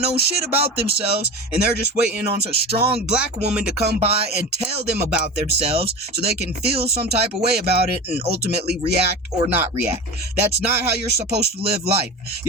know shit about themselves, and they're just waiting on a strong black woman to come by and tell them about themselves so they can feel some type of way about it and ultimately react or not react. That's not how you're supposed to live life.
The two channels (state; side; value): normal; both; correlation 0.28